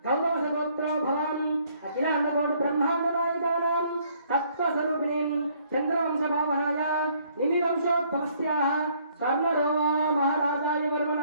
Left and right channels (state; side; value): inverted; both; correlation -0.64